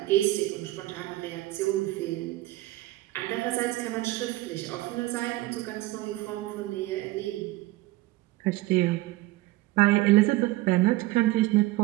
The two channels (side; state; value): left; quieter; 18.4 dB